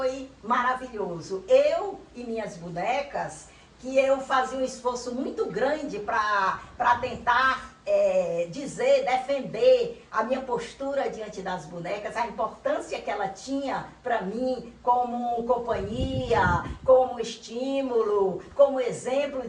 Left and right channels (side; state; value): both; identical; correlation 1.00